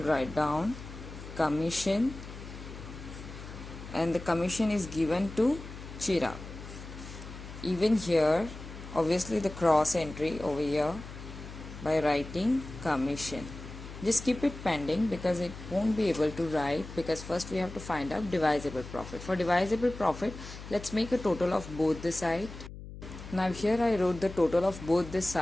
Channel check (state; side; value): noise; left; hum, 12 dB below the sound